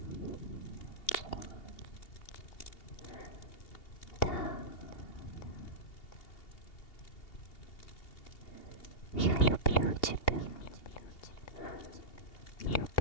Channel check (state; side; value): late; right; 2.8 ms